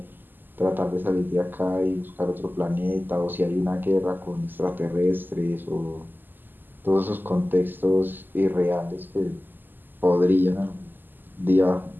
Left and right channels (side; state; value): left; late; 0.090 ms